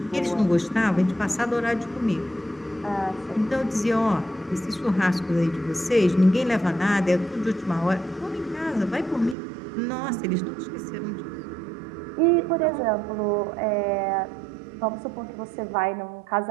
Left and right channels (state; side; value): drops out; left; at 9.3 s